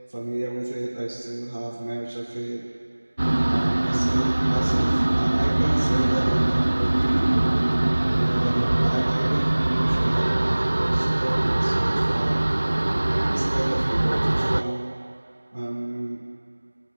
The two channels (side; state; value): both; inverted; correlation -1.00